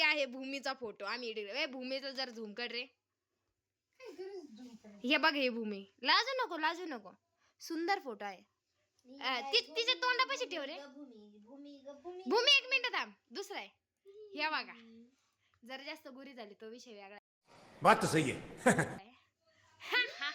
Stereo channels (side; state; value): both; identical; correlation 1.00